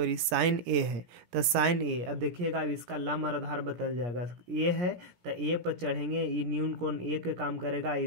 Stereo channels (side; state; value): left; late; 17 ms